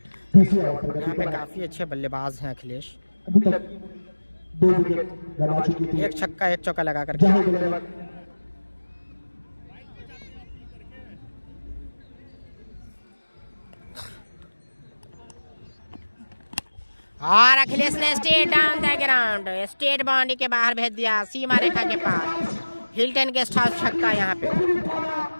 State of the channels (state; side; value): inverted; both; correlation -1.00